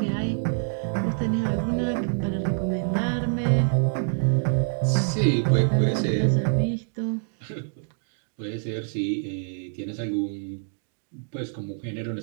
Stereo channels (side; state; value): left; silent; digital silence